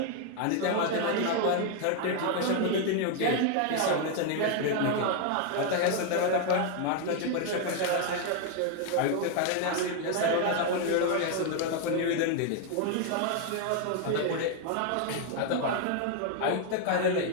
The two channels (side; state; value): both; different; correlation 0.00